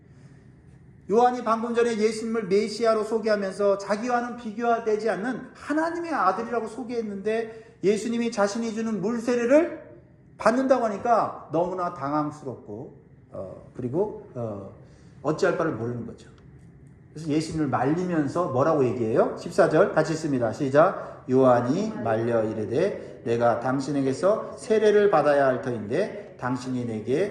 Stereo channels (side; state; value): both; identical; correlation 1.00